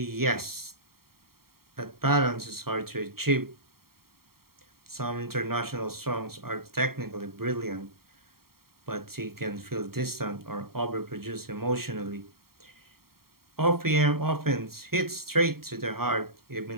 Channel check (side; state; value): left; late; 0.93 ms